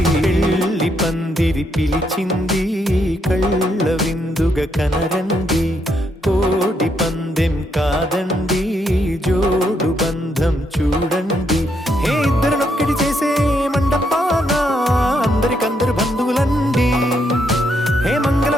పెళ్లి పందిరి పిలిచింది కళ్ళ విందుగ కనరండి కోడి పందెం కాదండి జోడు బంధం చూడండి హే ఇద్దరినొక్కటి చేసే మండపాన అందరికందరు బంధువులండి హే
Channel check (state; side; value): normal; both; correlation 0.76